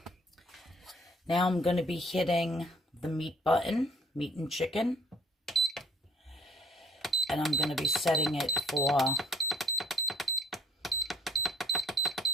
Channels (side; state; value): both; normal; correlation 0.59